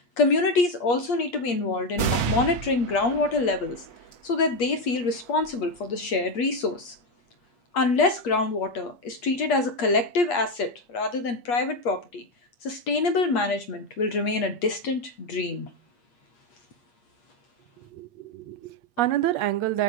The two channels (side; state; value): right; late; 8.4 ms